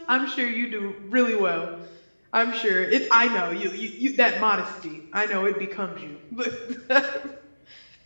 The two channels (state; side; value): inverted; both; correlation -1.00